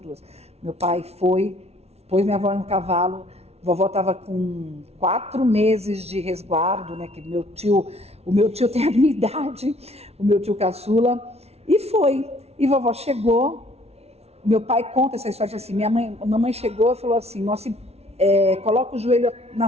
duas. Meu pai foi, pôs minha avó no cavalo, vovó estava com 4 meses de resguardo, né? Que o meu tio tem a minha idade, o meu tio caçula, e foi. E vovó chegou, meu pai conta essa história assim, minha mamãe chegou e falou assim, coloca o joelho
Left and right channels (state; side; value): late; left; 0.31 ms